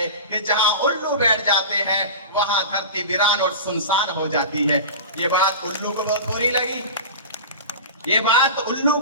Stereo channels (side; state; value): both; inverted; correlation -0.31